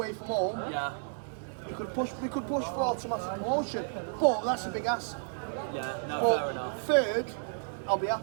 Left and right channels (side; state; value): left; silent; digital silence